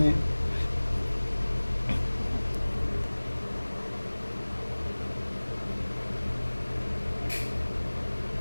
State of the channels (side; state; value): both; inverted; correlation -1.00